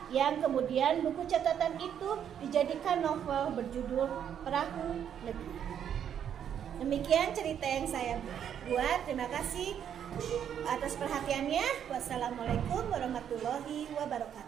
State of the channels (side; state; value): left; quieter; 9.0 dB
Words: yang kemudian buku catatan itu dijadikan novel berjudul Perahu Negeri. Demikian cerita yang saya buat. Terima kasih atas perhatiannya. Wassalamualaikum warahmatullahi